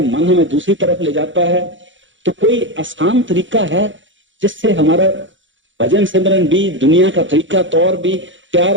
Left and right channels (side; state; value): left; late; 0.55 ms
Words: मन हमें दूसरी तरफ ले जाता है, तो कोई आसान तरीका है जिससे हमारा भजन सिमरन भी, दुनिया का तरीका तौर भी प्यार